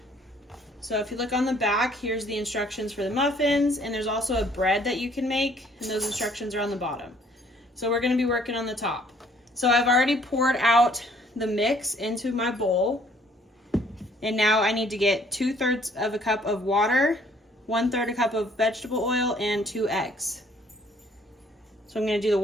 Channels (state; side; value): normal; both; correlation 0.61